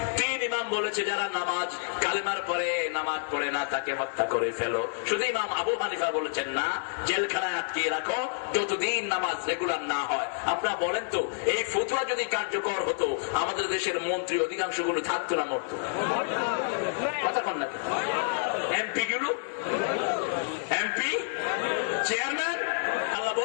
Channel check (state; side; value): silent; right; digital silence